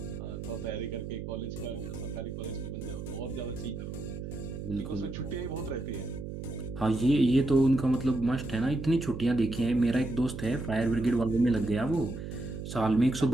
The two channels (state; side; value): noise; right; hum, 7 dB below the sound